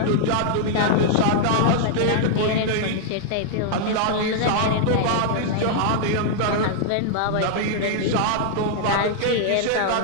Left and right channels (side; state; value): both; different; correlation -0.01